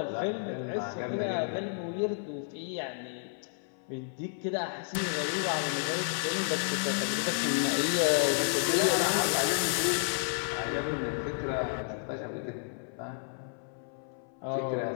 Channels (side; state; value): right; silent; 57 dB below the other